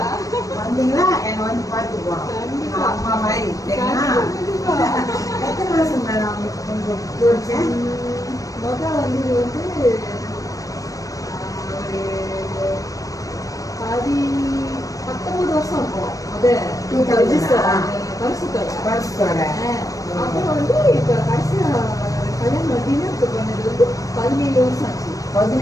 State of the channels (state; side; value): late; right; 0.16 ms